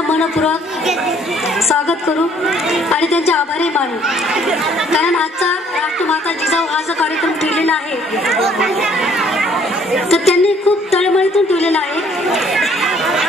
मनपूर्वक स्वागत करू आणि त्यांचे आभारी मानू. कारण आजचा राष्ट्रमाता जिजाऊ हा जो कार्यक्रम ठेवलेला आहे तर त्यांनी खूप तळमळीतून ठेवलेला आहे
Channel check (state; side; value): normal; both; correlation 0.61